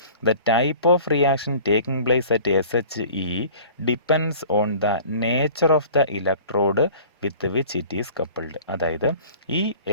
The type of reaction taking place at SHE depends on the nature of the electrode with which it is coupled. അതായത് ഈ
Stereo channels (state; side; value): inverted; both; correlation -0.46